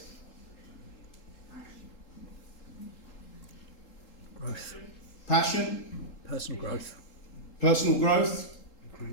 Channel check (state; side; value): late; right; 3.8 ms